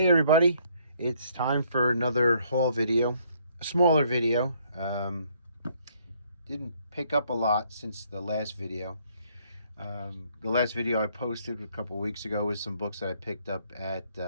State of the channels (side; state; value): both; inverted; correlation -0.66